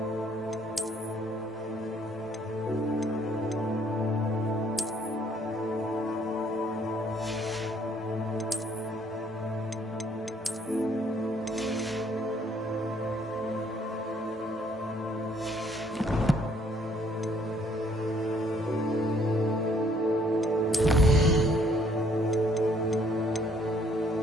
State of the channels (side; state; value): both; normal; correlation 0.64